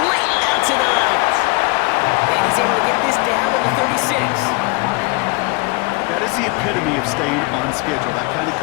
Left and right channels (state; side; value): quieter; right; 26.1 dB